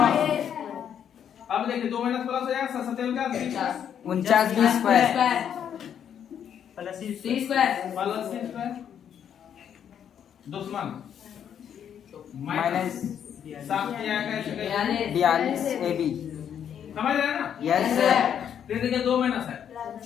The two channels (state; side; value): quieter; right; 8.8 dB